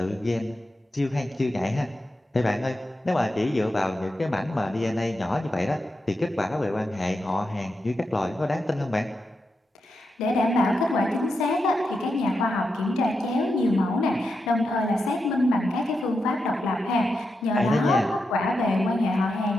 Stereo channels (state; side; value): normal; both; correlation 0.87